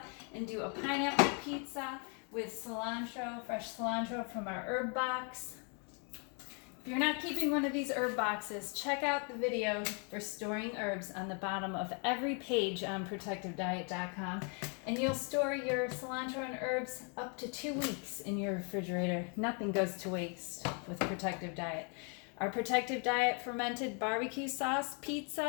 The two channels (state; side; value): quieter; right; 38.1 dB